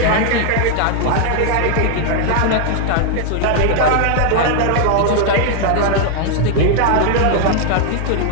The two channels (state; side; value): different; both; correlation 0.00